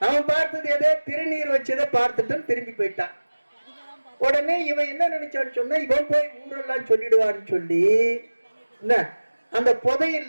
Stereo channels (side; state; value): both; inverted; correlation -1.00